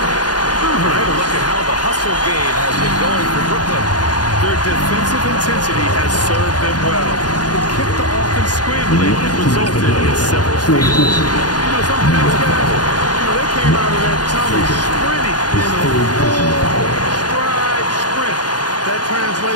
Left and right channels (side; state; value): right; late; 0.69 ms